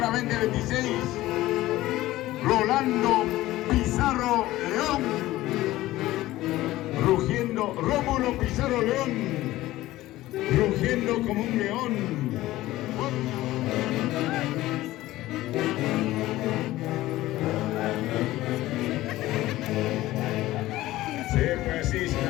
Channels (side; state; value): right; quieter; 16.5 dB